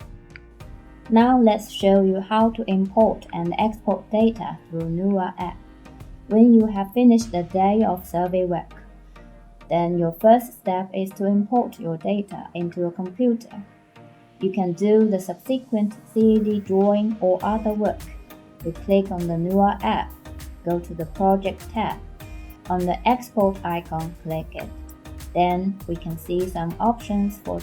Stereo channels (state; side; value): identical; both; correlation 1.00